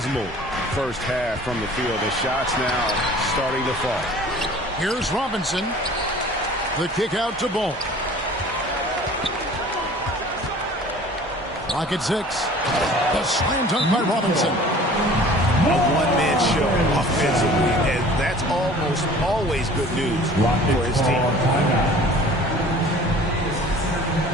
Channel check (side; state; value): both; normal; correlation 0.47